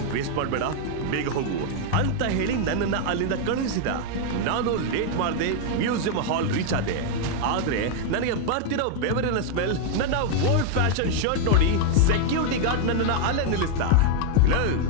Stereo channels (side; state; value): both; different; correlation 0.00